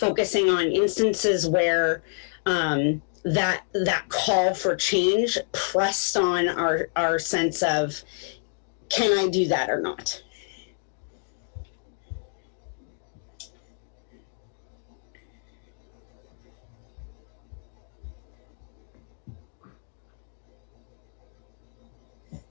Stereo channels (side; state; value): right; silent; digital silence